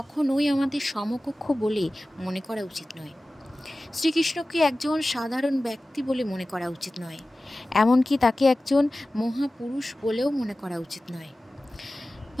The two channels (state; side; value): normal; both; correlation 0.96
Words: আমাদের সমকক্ষ বলে মনে করা উচিত নয়। শ্রীকৃষ্ণকে একজন সাধারণ ব্যক্তি বলে মনে করা উচিত নয়। এমনকি তাকে একজন মহাপুরুষ বলেও মনে করা উচিত নয়।